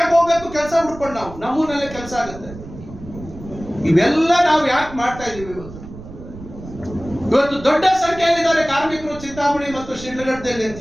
ಹೋಗ್ಬೇಕು ಕೆಲಸ ಹುಡ್ಕೊಂಡು? ನಾವು ನಮ್ಮೂರಲ್ಲೇ ಕೆಲಸ ಆಗುತ್ತೆ. ಇವೆಲ್ಲ ನಾವು ಯಾಕೆ ಮಾಡ್ತಾ ಇದೀವಿ? ಇವತ್ತು ದೊಡ್ಡ ಸಂಖ್ಯೆಯಲ್ಲಿದ್ದಾರೆ ಕಾರ್ಮಿಕರು ಚಿಂತಾಮಣಿ ಮತ್ತು ಶಿಡ್ಲಘಟ್ಟದಲ್ಲಿ ಅಂತ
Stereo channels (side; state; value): right; noise; rumble, 15 dB below the sound